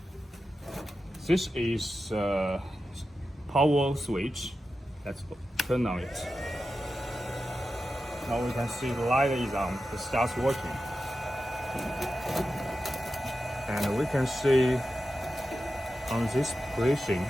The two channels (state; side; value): normal; both; correlation 0.91